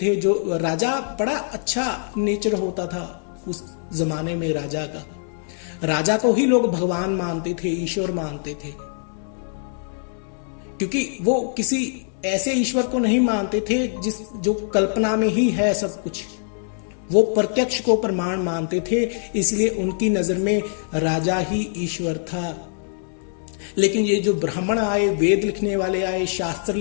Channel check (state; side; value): silent; right; 63 dB below the other